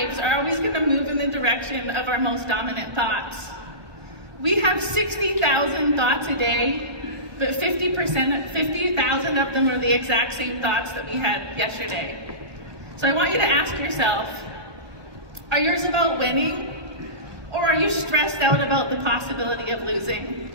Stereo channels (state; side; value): late; left; 1.3 ms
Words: are always going to move in the direction of our most dominant thoughts. We have 60,000 thoughts a day, but 50,000 of them are the exact same thoughts that we had yesterday. So I want you to ask yourself, are yours about winning, or are you stressed out about the possibility of losing?